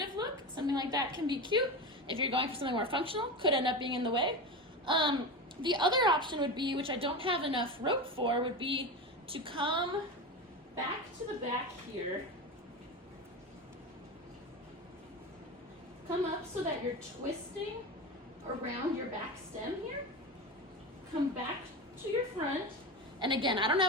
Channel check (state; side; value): normal; both; correlation 0.23